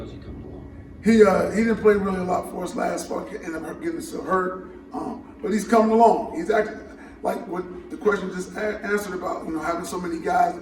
he coming along? He didn't play really a lot for us last fall, ended up getting himself hurt. But he's coming along. He's actually, like what the question just answered about, you know, having so many guys to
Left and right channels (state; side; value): identical; both; correlation 1.00